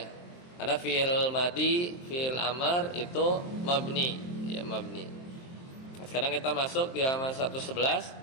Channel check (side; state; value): right; late; 23 ms